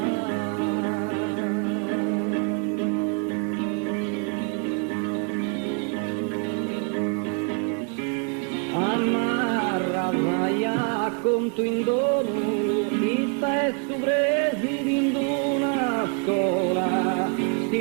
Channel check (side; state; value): left; quieter; 37.2 dB